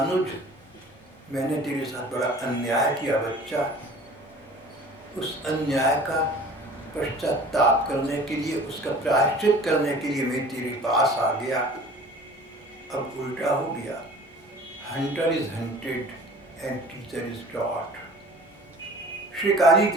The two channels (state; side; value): normal; both; correlation 0.45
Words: मैंने तेरे साथ बड़ा अन्याय किया बच्चा, उस अन्याय का पश्चाताप करने के लिए, उसका प्रायश्चित करने के लिए मैं तेरे पास आ गया। अब उल्टा हो गया, hunter is hunted and teacher is taught. शिकारी